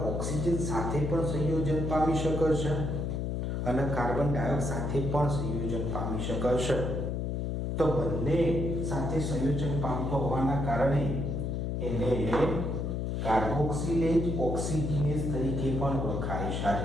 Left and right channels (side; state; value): left; noise; hum, 1 dB below the sound